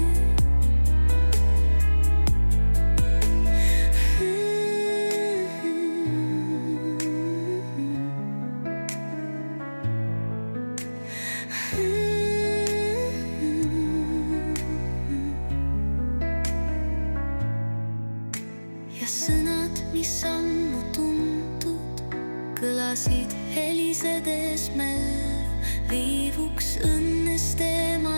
Sõnad, mis ammu tuntud, kõlasid helisedes mällu, viivuks õnnest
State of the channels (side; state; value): both; inverted; correlation -1.00